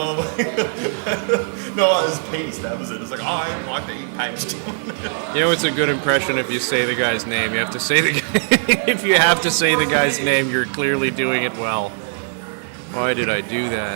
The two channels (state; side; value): silent; left; digital silence